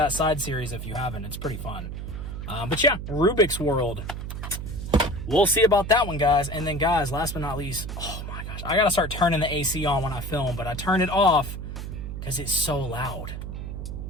side series if you haven't. It's pretty fun. But yeah, Rubik's World. We'll see about that one, guys. And then, guys, last but not least, oh my gosh, I gotta start turning the AC on when I film, but I turn it off because it's so loud.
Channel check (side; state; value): right; noise; hum, 7 dB below the sound